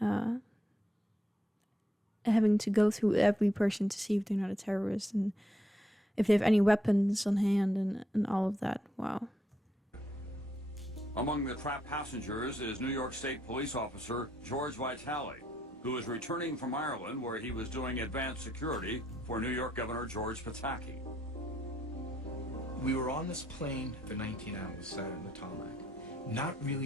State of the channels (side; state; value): both; normal; correlation 0.76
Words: Having to go through every person to see if they're not a terrorist and if they have any weapons on hand and all of that. Wow. Among the trapped passengers is New York State Police Officer George Vitale, who is returning from Ireland, where he was doing advanced security for New York Governor George Pataki. We were on this plane for 19 hours, sat on the tarmac, not